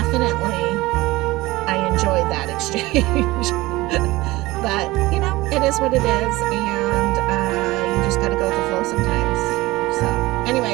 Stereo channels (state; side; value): quieter; left; 19.7 dB